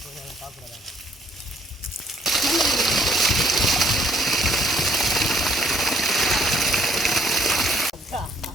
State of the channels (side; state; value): both; normal; correlation 0.65